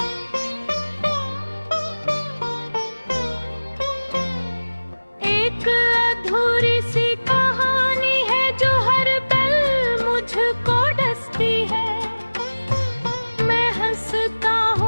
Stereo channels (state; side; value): inverted; both; correlation -1.00